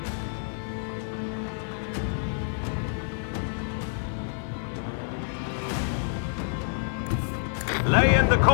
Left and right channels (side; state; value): right; silent; 55 dB below the other